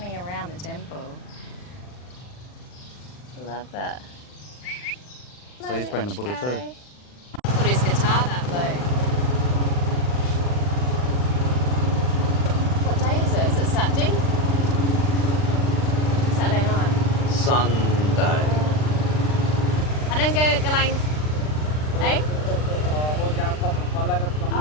around the temple. I love that. So he's playing the Buddha too. Put his guitar that way. What day is it? Is it Saturday? Saturday night. Sunday. I don't go Galang. Eh?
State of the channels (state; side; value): late; right; 39 ms